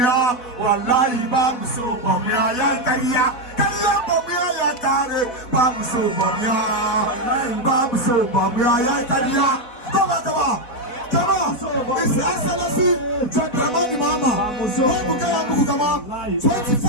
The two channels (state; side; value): late; right; 4.1 ms